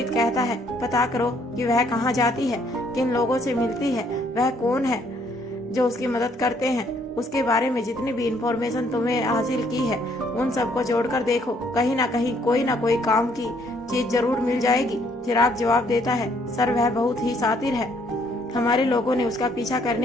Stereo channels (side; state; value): both; normal; correlation 0.66